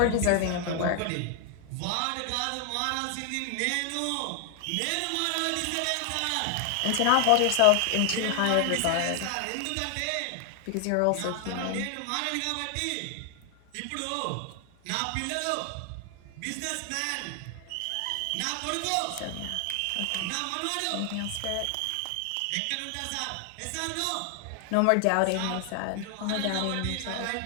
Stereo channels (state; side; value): different; both; correlation 0.00